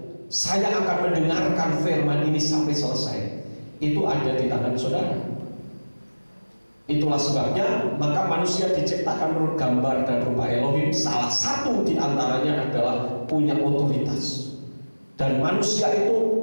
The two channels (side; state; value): both; inverted; correlation -1.00